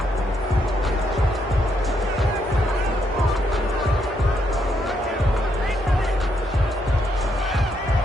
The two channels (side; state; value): both; normal; correlation 0.76